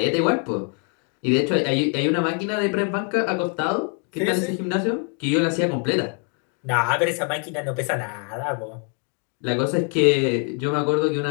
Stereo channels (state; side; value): quieter; right; 39.8 dB